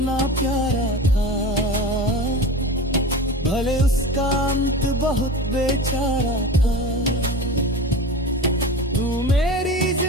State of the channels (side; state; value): both; normal; correlation 0.31